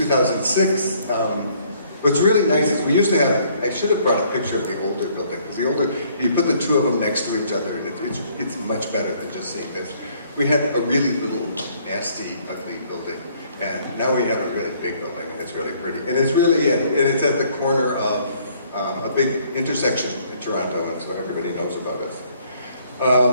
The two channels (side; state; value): both; inverted; correlation -0.63